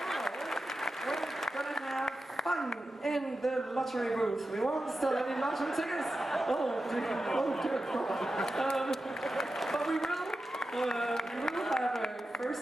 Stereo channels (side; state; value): both; normal; correlation 0.91